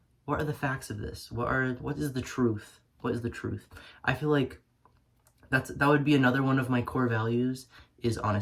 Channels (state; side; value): identical; both; correlation 1.00